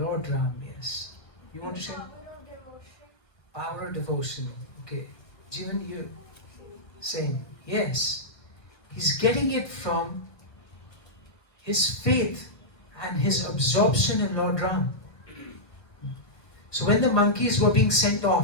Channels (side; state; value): right; late; 1.2 ms